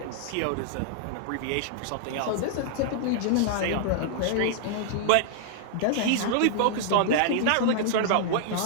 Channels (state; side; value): different; both; correlation -0.01